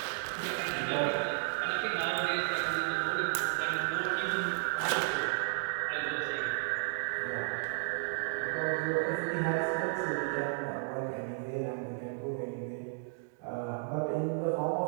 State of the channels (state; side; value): silent; left; digital silence